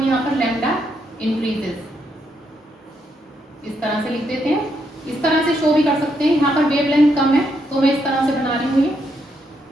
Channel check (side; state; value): both; normal; correlation 0.78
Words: यहाँ पर लैम्डा इंक्रीजेस इस तरह से लिख देते हैं, इस तरह से शो भी कर सकते हैं। यहाँ पर वेवलेंथ कम है तो मैं इस तरह से बना रही हूँ ये,